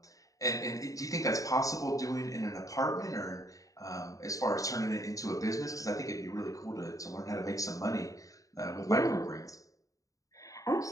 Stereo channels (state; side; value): late; right; 0.16 ms